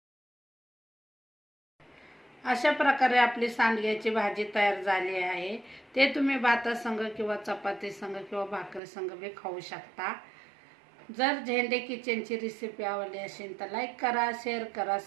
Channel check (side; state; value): left; drops out; at 8.8 s